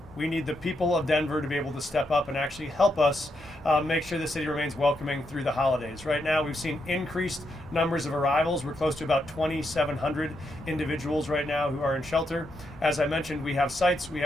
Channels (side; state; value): both; normal; correlation 0.81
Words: We need the people of Denver to be able to step up and actually help us make sure the city remains welcoming through the holidays. Right now, we've seen increased numbers of arrivals. We're close to about 2,700 individuals right now who are in shelter. As I mentioned, we have sites, we